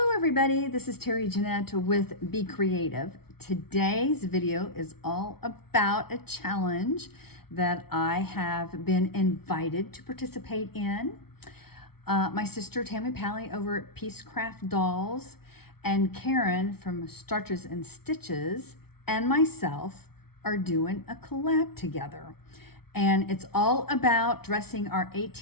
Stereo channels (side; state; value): right; late; 0.95 ms